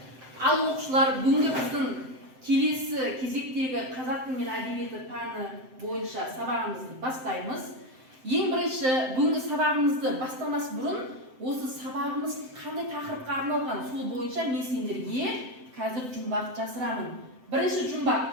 Ал оқушылар, бүгінгі біздің келесі кезектегі қазақ тілі мен әдебиеті пәні бойынша сабағымызды бастаймыз. Ең бірінші, бүгінгі сабағымызды бастамас бұрын, осы сабағымыз қандай тақырыпқа арналған сол бойынша мен сендерге қазір жұмбақ жасырамын. Бірінші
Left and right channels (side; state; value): left; late; 7.7 ms